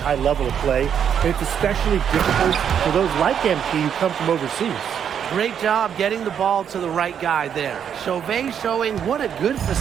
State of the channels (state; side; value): quieter; left; 8.3 dB